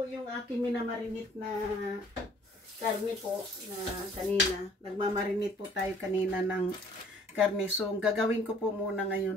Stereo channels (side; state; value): both; normal; correlation 0.56